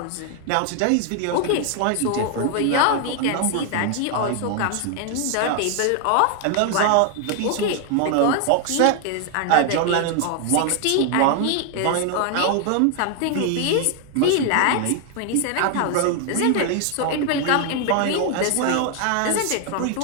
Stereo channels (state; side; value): different; both; correlation 0.00